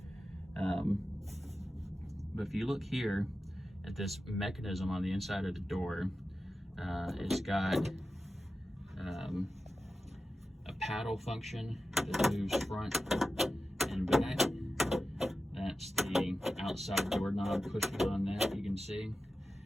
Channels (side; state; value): both; normal; correlation 0.92